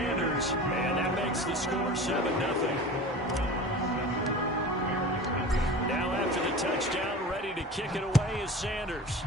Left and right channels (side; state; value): both; normal; correlation 0.35